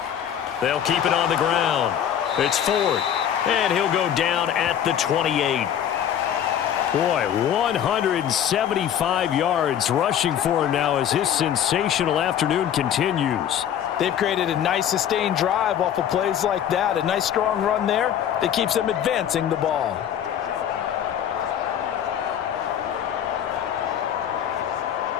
They'll keep it on the ground. It's Ford, and he'll go down at the 28. Boy, 175 yards rushing for him now as his sensational afternoon continues. They've created a nice sustained drive off of plays like that. A nice strong run there that keeps them advancing the ball.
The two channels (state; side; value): quieter; right; 9.7 dB